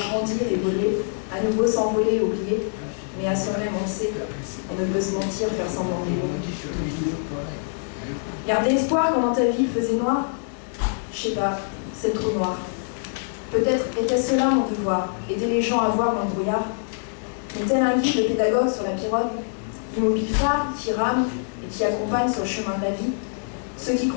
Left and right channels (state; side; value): silent; right; digital silence